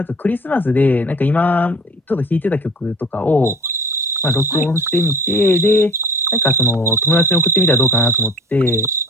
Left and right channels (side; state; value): both; normal; correlation 0.43